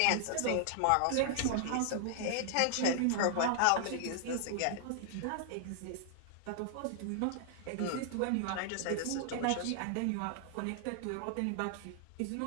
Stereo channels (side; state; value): both; different; correlation 0.00